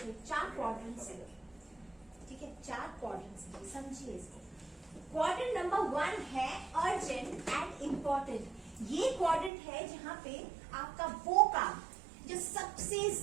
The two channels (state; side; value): drops out; left; at 9.5 s